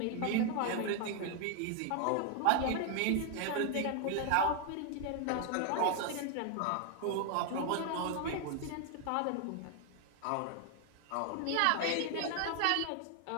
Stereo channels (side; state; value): both; different; correlation 0.00